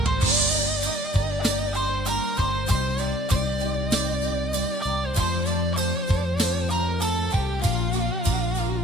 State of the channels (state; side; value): normal; both; correlation 0.57